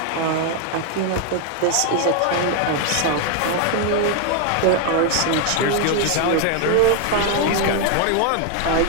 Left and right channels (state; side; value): different; both; correlation 0.00